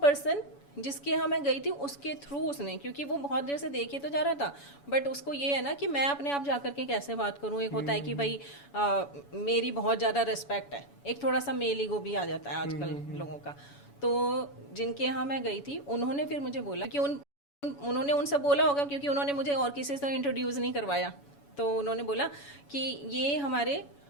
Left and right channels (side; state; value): right; late; 7.1 ms